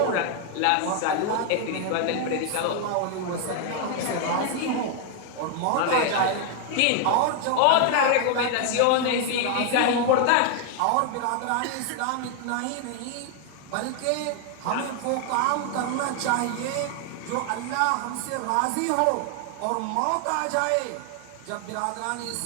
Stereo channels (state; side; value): different; both; correlation 0.00